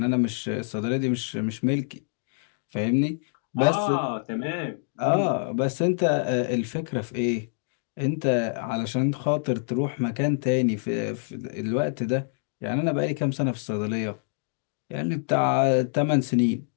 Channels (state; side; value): silent; right; digital silence